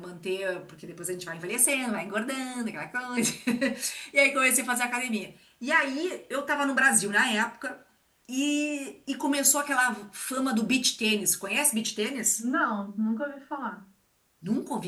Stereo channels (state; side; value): identical; both; correlation 1.00